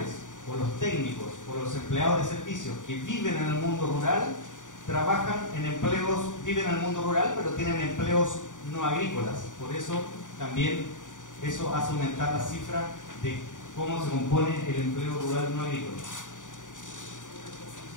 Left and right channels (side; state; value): right; late; 0.87 ms